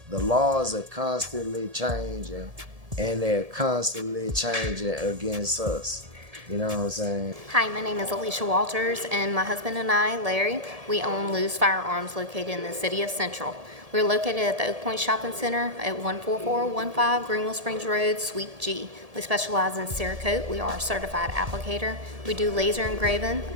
The laws are constantly changing, and they're constantly changing against us. You know what I'm saying? Hi, my name is Alicia Walters, and my husband and I, Larry, we own Lou's Firearms located in the city of Central. We're located at the Oak Point Shopping Center at 14415 Greenville Springs Road, Suite G. We specialize in Cerakote. We are a certified applicator. We do laser engraving,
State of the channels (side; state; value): left; late; 1.7 ms